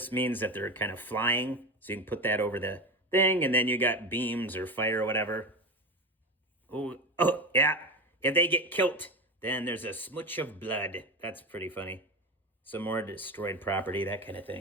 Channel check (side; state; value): both; normal; correlation 0.22